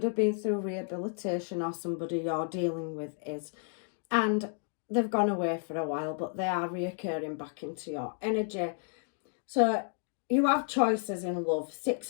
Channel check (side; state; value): right; silent; 57 dB below the other